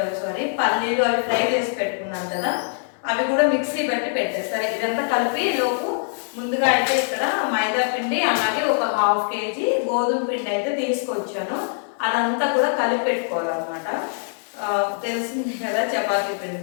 పల్లీలు అవి ఫ్రై చేసి పెట్టుకున్నాను కదా, అవి కూడా మిక్సీ పెట్టి పెట్టేస్తారు. ఇదంతా కలిపి లోపు ముందుగా అయితే ఇక్కడ మైదా పిండి అలాగే ఒక 1/2 కేజీ గోధుమ పిండి అయితే తీసుకొచ్చాను. అదంతా కూడా కలిపి పెట్టుకోవాలన్నమాట. తెలిసింది కదా చపాతీ పిండి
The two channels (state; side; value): silent; right; digital silence